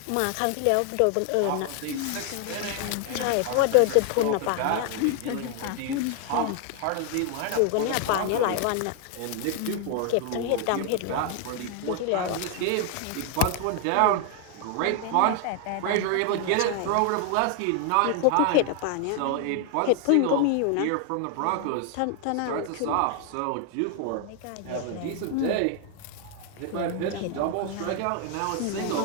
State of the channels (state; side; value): different; both; correlation 0.00